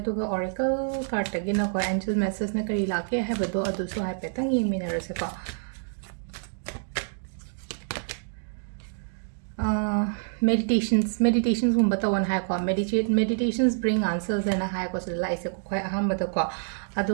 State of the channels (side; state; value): left; silent; digital silence